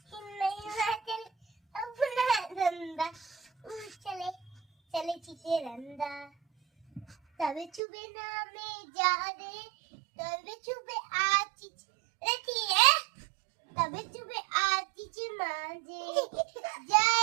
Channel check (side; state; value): left; drops out; at 7.8 s